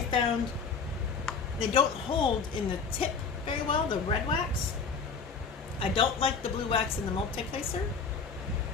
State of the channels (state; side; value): quieter; right; 5.2 dB